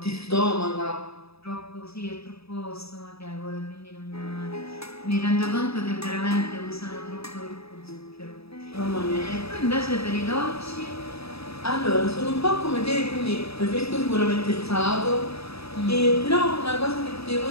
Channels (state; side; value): late; right; 0.78 ms